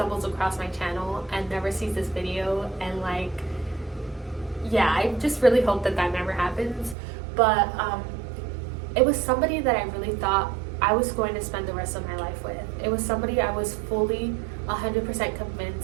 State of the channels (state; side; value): drops out; left; at 7.0 s